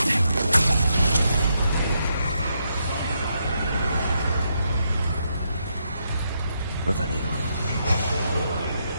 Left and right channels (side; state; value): both; inverted; correlation -0.79